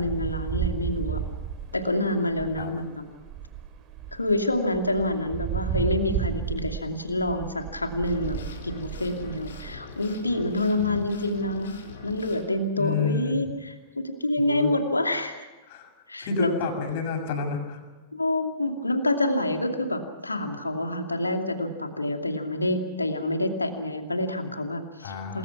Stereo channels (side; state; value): both; inverted; correlation -0.57